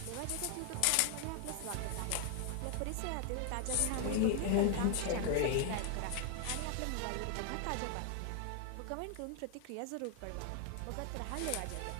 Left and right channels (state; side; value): different; both; correlation 0.00